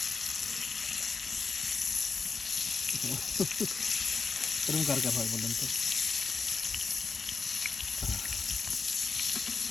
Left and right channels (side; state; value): right; quieter; 4.9 dB